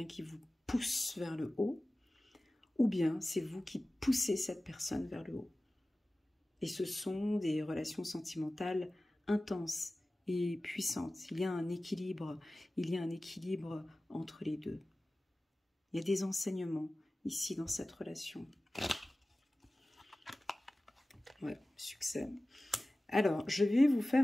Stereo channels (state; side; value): normal; both; correlation 0.97